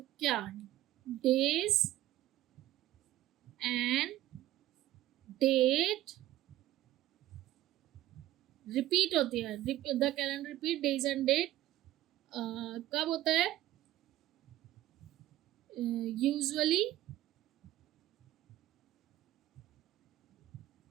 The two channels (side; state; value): left; quieter; 14.7 dB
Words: डेज एंड डेट रिपीट होती है, the calendar repeat days and date कब होता है, यूजुअली